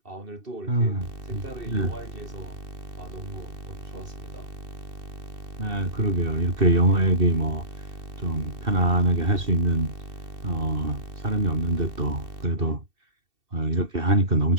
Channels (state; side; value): late; left; 2.7 ms